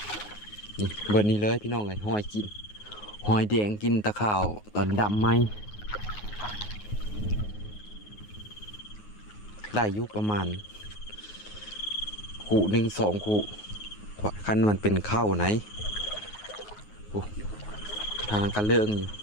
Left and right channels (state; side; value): late; right; 9.5 ms